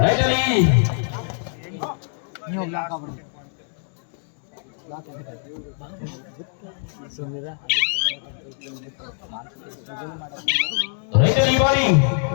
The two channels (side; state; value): right; silent; 59 dB below the other